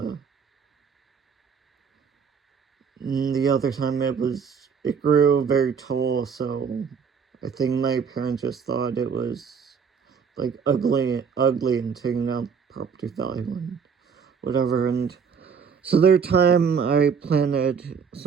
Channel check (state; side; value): quieter; left; 6.4 dB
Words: the other time it grew very tall, so I think my parents just thought it was like ugly and taking down property value and whatever. And so there time I planted